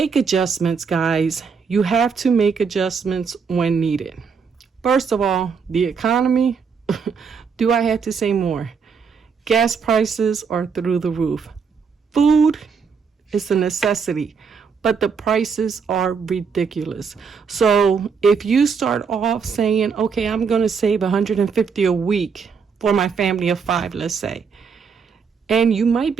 adjustments, guys. You have to make adjustments when needed. First of all, the economy. Do I have to say more? Gas prices are through the roof. Food is a necessity, but the prices are ridiculous. So if you start off saying, okay, I'm going to save $150 a week for my family of 5, let's say, and you might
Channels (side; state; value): left; quieter; 5.9 dB